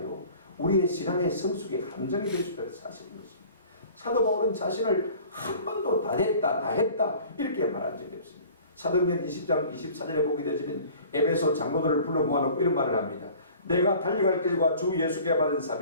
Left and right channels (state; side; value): inverted; both; correlation -0.46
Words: 우리의 신앙의 성숙의 함정이 될 수 있다는 사실인 것입니다. 사도 바울은 자신을 한 번도 다 했다 이렇게 말한 적이 없습니다. 사도행전 20장 24절에 보게 되지만 에베소 장로들을 불러 모아놓고 이런 말을 합니다. 내가 달려갈 길과 주 예수께 받은